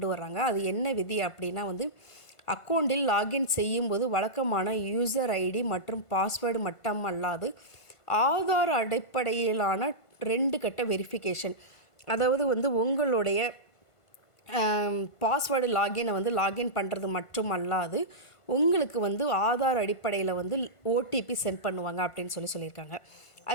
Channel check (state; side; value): late; right; 1.5 ms